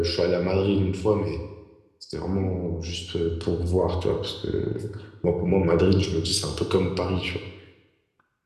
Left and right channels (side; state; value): both; identical; correlation 1.00